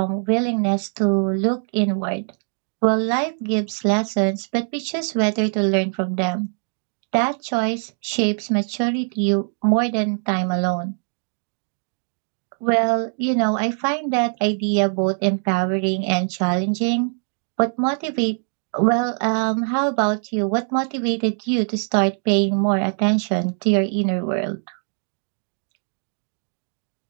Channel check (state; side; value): silent; left; 58 dB below the other